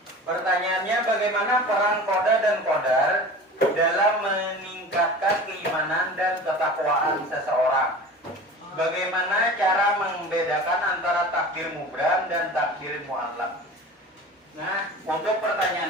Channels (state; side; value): normal; both; correlation 0.37